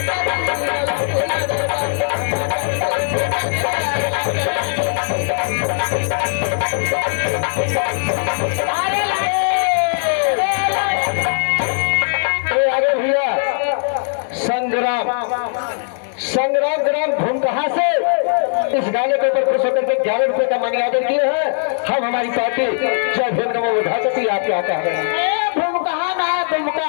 आगे भैया संग्राम संग्राम ग्राम भूमकहा से इस गाने के ऊपर खुश होकर के 11 रुपए का मनी ऑर्डर किए हैं। हम हमारी पार्टी जय भीम नमो बुद्धाय आप क्या कह रहे हैं? भूमकहा ना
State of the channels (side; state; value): right; silent; 67 dB below the other